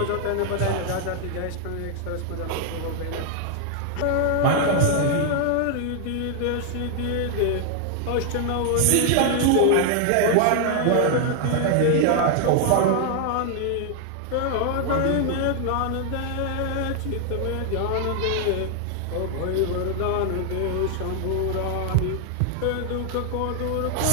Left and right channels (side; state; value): both; different; correlation 0.00